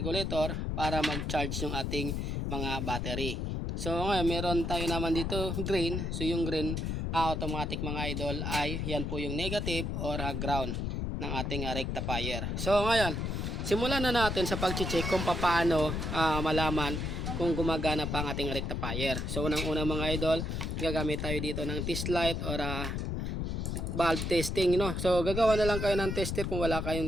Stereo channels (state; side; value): noise; left; rumble, 2 dB below the sound